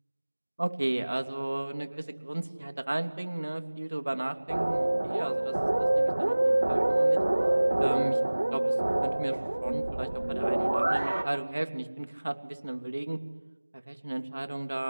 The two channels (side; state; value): both; inverted; correlation -1.00